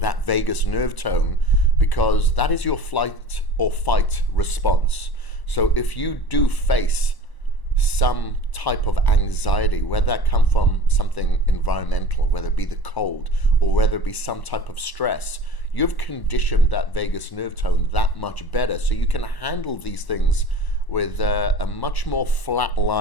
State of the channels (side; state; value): right; late; 1.1 ms